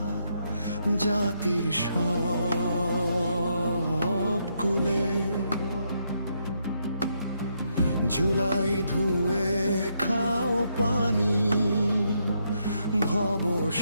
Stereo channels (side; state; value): both; inverted; correlation -0.77